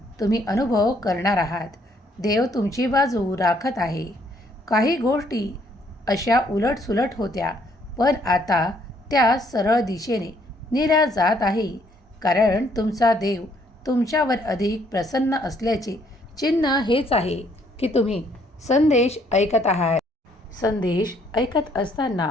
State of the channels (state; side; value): normal; both; correlation 0.67